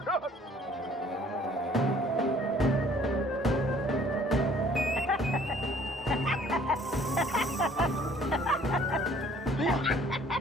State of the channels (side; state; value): both; normal; correlation 0.56